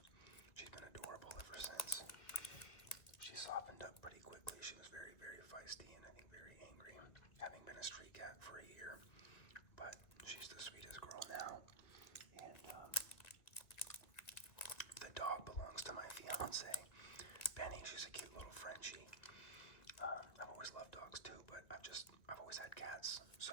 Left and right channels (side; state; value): right; late; 2.1 ms